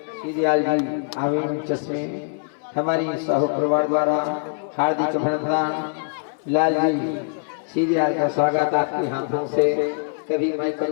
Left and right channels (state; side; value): silent; right; digital silence